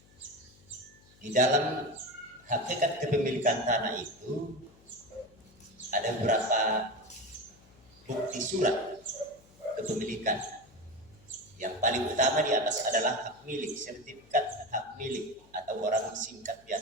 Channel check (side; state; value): left; noise; hum, 27 dB below the sound